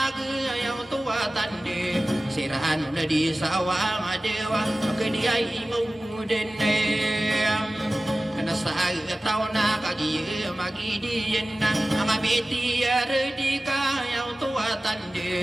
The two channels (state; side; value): normal; both; correlation 0.96